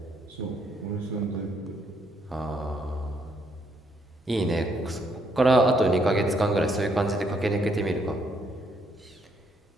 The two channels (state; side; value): normal; both; correlation 0.72